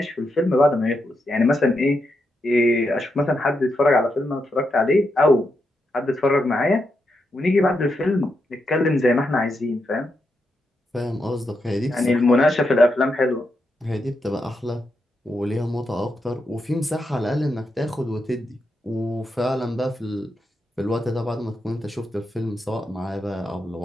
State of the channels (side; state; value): both; normal; correlation 0.84